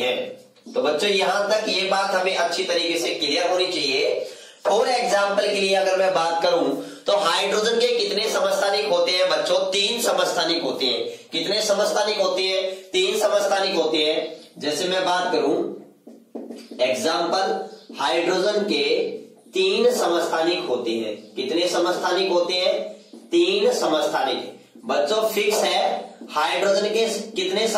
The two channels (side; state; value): both; identical; correlation 1.00